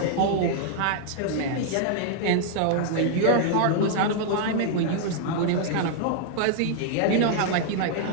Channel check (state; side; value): different; both; correlation -0.01